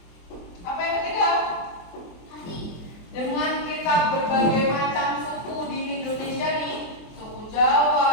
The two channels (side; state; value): right; late; 23 ms